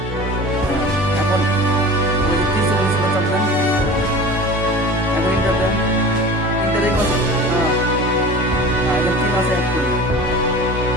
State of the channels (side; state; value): both; normal; correlation 0.38